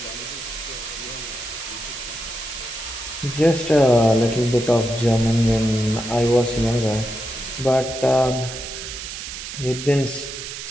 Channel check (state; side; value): noise; right; hiss, 9 dB below the sound